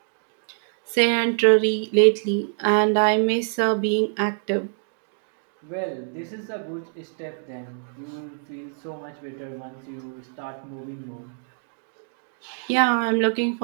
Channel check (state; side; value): silent; left; digital silence